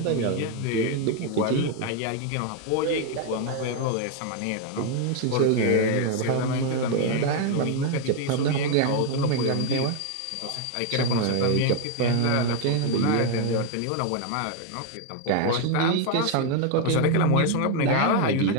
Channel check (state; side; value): different; both; correlation 0.00